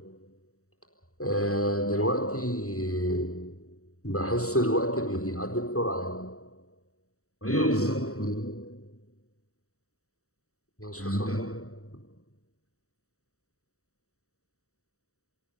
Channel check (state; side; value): late; right; 0.65 ms